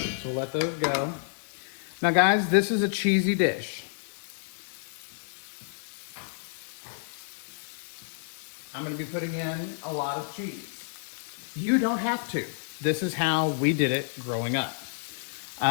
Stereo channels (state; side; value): silent; right; 58 dB below the other